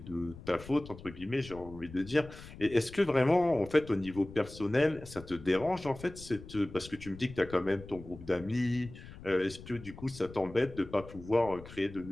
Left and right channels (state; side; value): noise; left; rumble, 16 dB below the sound